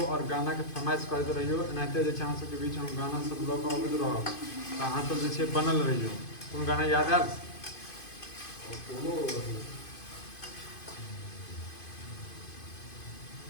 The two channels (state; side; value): late; right; 2.5 ms